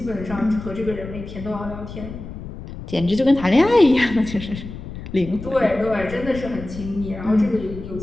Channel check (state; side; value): noise; left; rumble, 11 dB below the sound